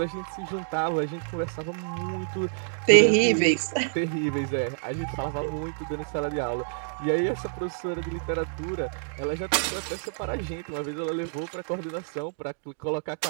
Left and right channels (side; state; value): left; silent; digital silence